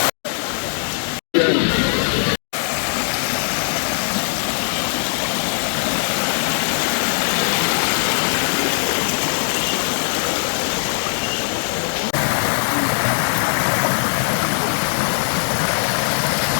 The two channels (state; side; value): silent; right; digital silence